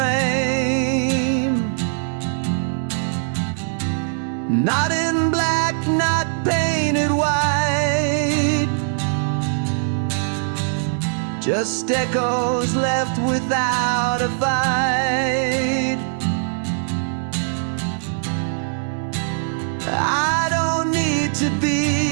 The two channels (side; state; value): left; silent; digital silence